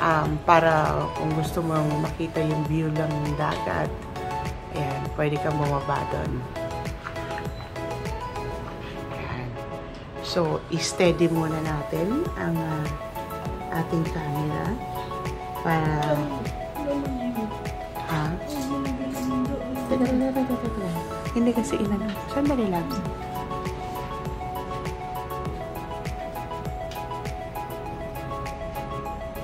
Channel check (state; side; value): identical; both; correlation 1.00